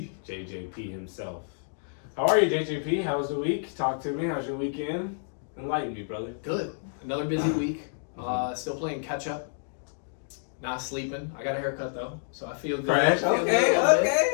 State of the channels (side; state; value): right; silent; digital silence